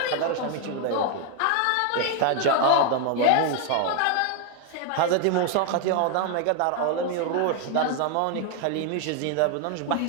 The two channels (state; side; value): different; both; correlation 0.01